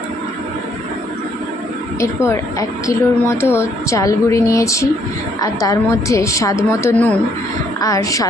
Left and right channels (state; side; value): normal; both; correlation 0.68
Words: এরপর 1 কিলোর মতো চাল গুঁড়ি নিয়েছি, আর তার মধ্যে স্বাদ মতো নুন আর